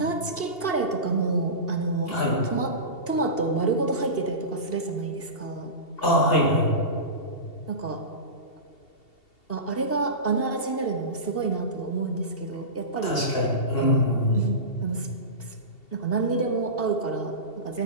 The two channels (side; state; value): right; late; 2.7 ms